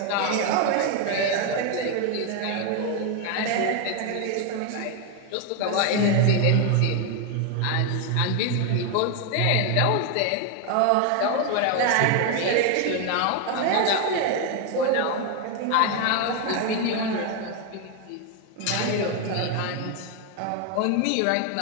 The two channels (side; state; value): both; different; correlation 0.01